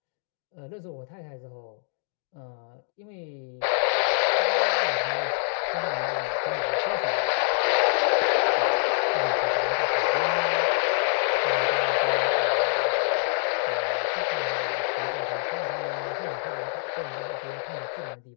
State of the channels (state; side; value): silent; right; 61 dB below the other